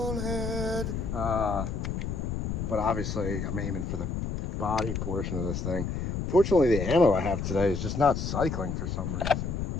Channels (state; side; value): noise; left; rumble, 3 dB below the sound